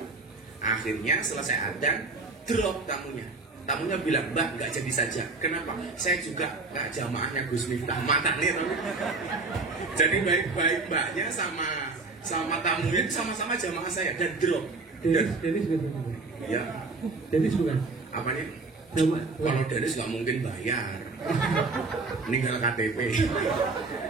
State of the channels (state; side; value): quieter; left; 3.7 dB